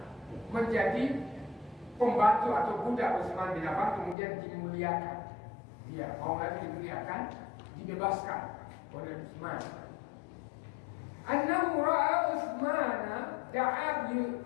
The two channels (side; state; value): right; drops out; at 4.2 s